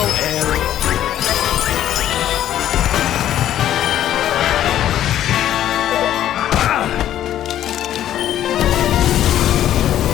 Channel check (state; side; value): quieter; right; 11.7 dB